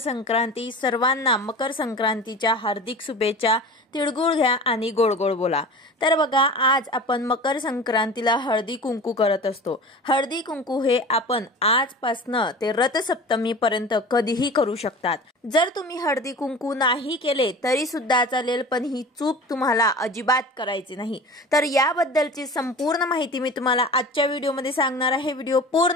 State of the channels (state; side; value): normal; both; correlation 0.37